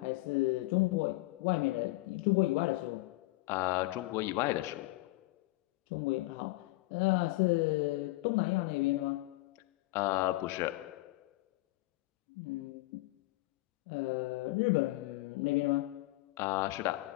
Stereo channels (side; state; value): right; quieter; 20.3 dB